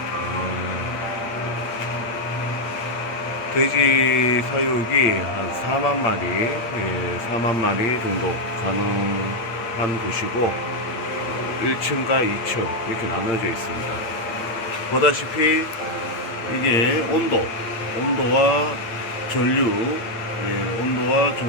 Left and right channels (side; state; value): right; late; 8.8 ms